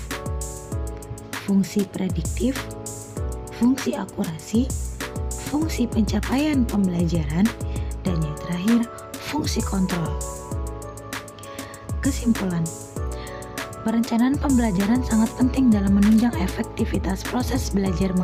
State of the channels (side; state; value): both; identical; correlation 1.00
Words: fungsi prediktif, fungsi akurasi, fungsi pencapaian pembelajaran, dan yang terakhir, fungsi kontrol. Kesimpulan, perencanaan pembelajaran sangat penting dalam menunjang efektivitas proses belajar